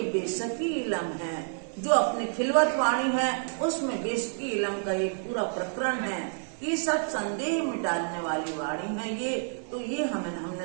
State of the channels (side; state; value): left; silent; digital silence